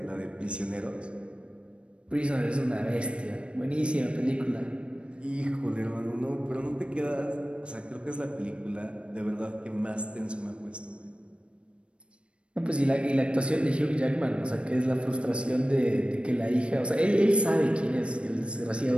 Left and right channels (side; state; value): left; late; 0.058 ms